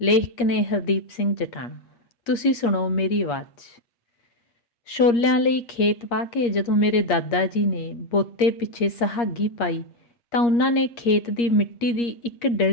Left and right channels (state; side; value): late; right; 8.5 ms